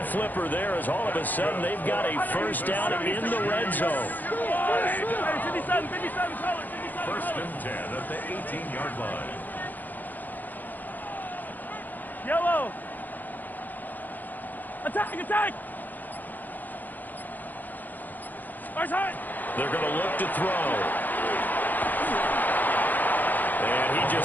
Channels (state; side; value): late; right; 0.085 ms